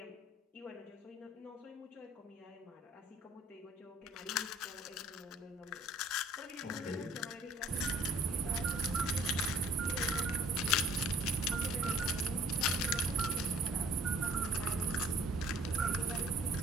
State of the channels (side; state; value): both; normal; correlation 0.55